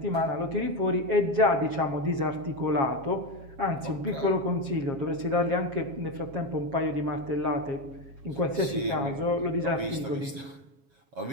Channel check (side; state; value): left; late; 7.3 ms